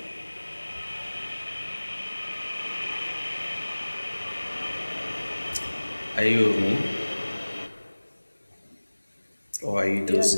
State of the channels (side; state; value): both; inverted; correlation -1.00